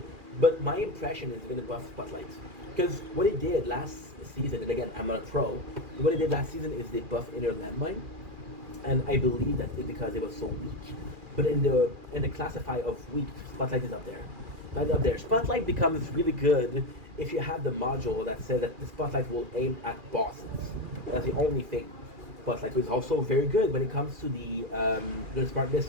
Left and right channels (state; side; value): late; left; 2.4 ms